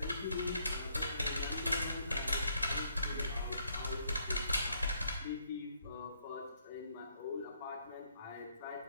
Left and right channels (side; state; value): both; inverted; correlation -0.69